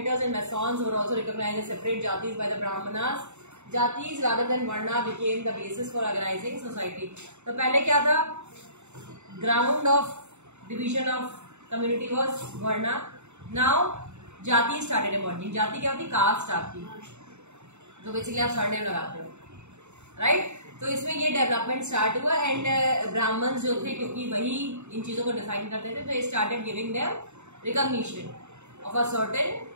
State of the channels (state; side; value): late; left; 0.82 ms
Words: and masons were also recognized as separate jatis by the brahmanas. Jatis rather than varna became the basis for organizing society. तो पहले क्या था? Ground of division of community was varna. Now jati started emerging. जाति क्या होती? Cast आपकी, तो basically आप सरनेम लगाते हो, राइट? तो इसमें ये डेवलपमेंट स्टार्ट हुआ एंड ब्राह्मण्स जो थे, क्योंकि वही इन चीजों को डिफाइन करते थे, तो ये started giving them recognition of a